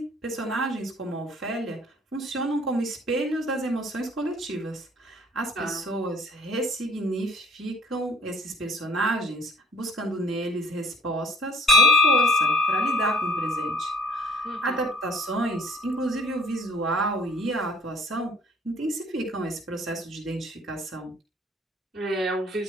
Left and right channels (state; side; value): normal; both; correlation 0.56